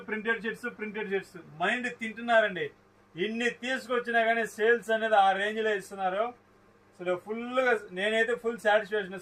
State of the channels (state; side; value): identical; both; correlation 1.00